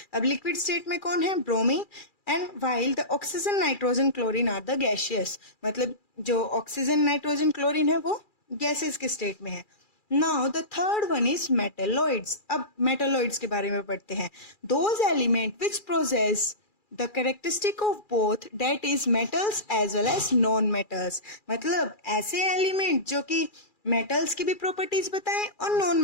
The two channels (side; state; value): right; late; 2.4 ms